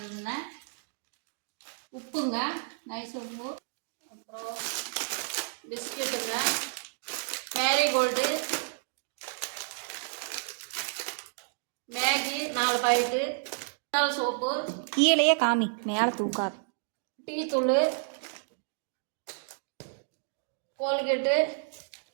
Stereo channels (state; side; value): silent; left; digital silence